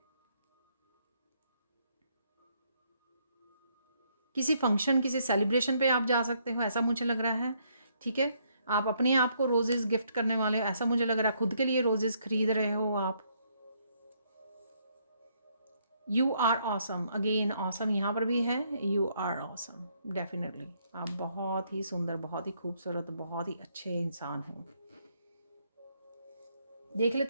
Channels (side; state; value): both; inverted; correlation -0.71